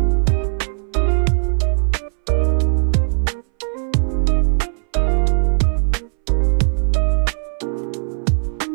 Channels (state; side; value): silent; left; 65 dB below the other